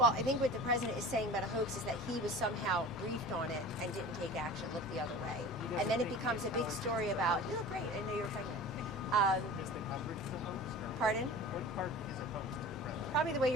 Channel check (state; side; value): normal; both; correlation 0.38